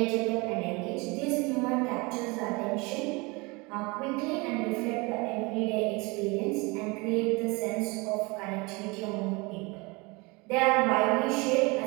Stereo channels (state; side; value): quieter; left; 26.4 dB